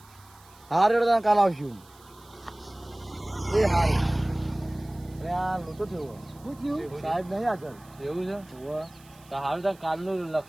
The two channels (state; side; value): noise; right; hiss, 26 dB below the sound